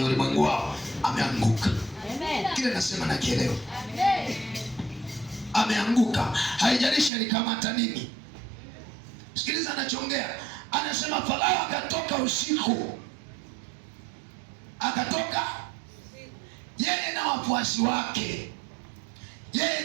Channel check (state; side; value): drops out; left; at 7.1 s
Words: ulimwengu wao ameanguka. Amen. Kile nasema na kielewa. Amen. Ameanguka. Haijalishi alikamata nini. Sikiliza anachoongea. Anasema Farao akatoka usiku. Akatoka yeye na wafuasi wake. Yeye